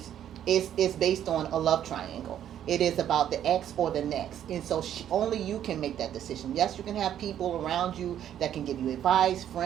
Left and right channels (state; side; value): quieter; left; 10.5 dB